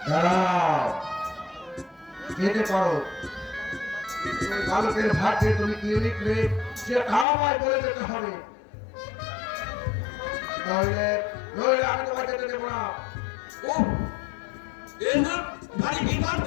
দাঁড়াও, যেতে পারো। ওই বালকের ভাগ্যে তুমি কি লিখলে সেটা আমায় বলে যেতে হবে, নইলে নইলে আমি তোমাকে যেতে দেবো না। ও এসব ভারী বিপদ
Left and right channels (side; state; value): right; drops out; at 7.2 s